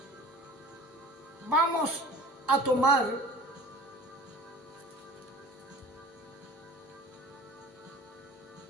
Vamos a tomar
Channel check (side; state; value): both; normal; correlation 0.42